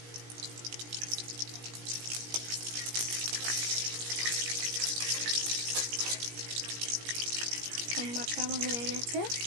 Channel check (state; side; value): late; left; 17 ms